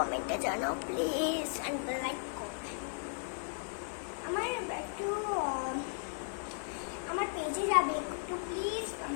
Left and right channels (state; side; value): silent; right; 54 dB below the other